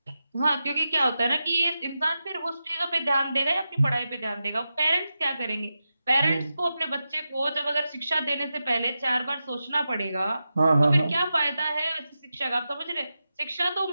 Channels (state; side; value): inverted; both; correlation -0.90